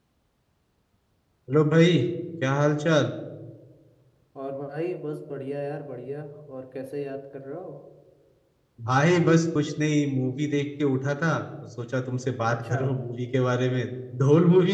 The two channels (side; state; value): both; identical; correlation 1.00